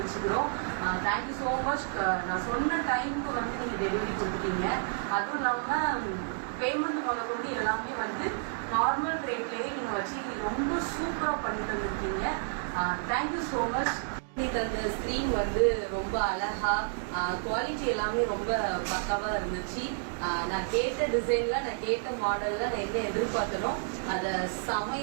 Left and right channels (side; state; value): left; silent; digital silence